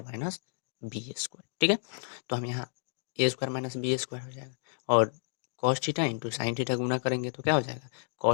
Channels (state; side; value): silent; right; digital silence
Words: minus B square. ठीक है, तो हम यहाँ A square minus B square हो जाएगा, और cos theta into sine theta गुना करेंगे तो क्या हो जाएगा,